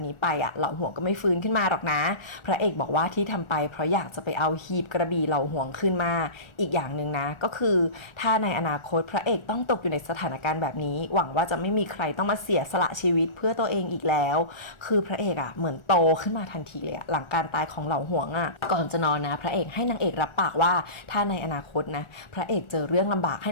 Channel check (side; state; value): right; late; 1.4 ms